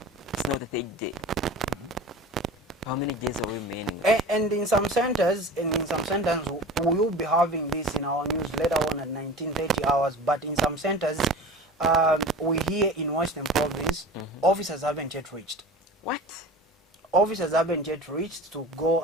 It's not the third day. How many days are we remaining? And in some centers, we will be having this in our news later on at 19:30 hours. But in some centers, we hear in Western Province, officers haven't yet reached. What? Officers haven't yet reached to go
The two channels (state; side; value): normal; both; correlation 0.37